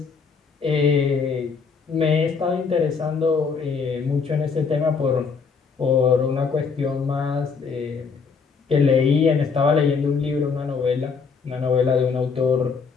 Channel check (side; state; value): right; quieter; 5.3 dB